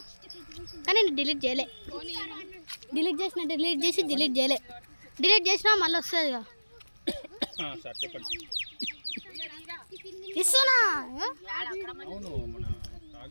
కానీ నేను డిలీట్ చేయలే. డిలీట్ చేయలే. డిలీట్ చేసినా మళ్ళీ వస్తుంది ఇక ఇస్తున్నా. అవును మన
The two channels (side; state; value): both; inverted; correlation -1.00